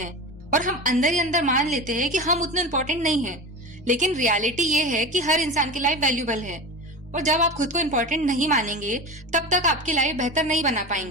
और हम अंदर ही अंदर मान लेते हैं कि हम उतने इम्पोर्टेंट नहीं हैं। लेकिन रियलिटी ये है कि हर इंसान की लाइफ वैल्यूबल है और जब आप खुद को इम्पोर्टेंट नहीं मानेंगे तब तक आपकी लाइफ बेहतर नहीं बना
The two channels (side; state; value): both; normal; correlation 0.28